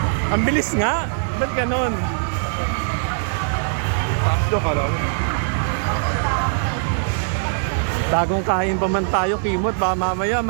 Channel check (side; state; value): left; silent; 65 dB below the other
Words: Ang bilis nga. Ba't ganon? Takso ka lang. Bagong kain pa man tayo, Kimot. Baka mamaya